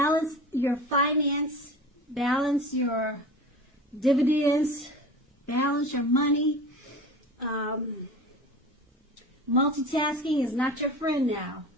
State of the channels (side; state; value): both; normal; correlation 0.36